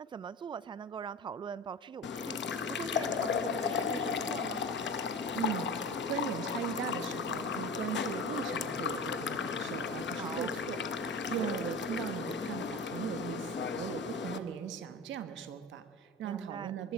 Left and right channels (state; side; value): normal; both; correlation 0.31